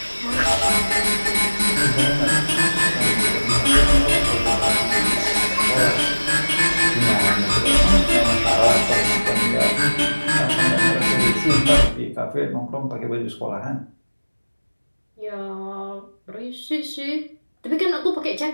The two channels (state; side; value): inverted; both; correlation -1.00